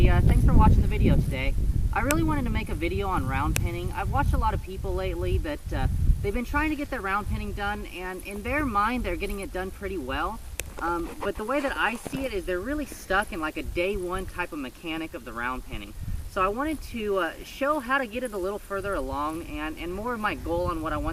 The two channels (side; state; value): both; identical; correlation 1.00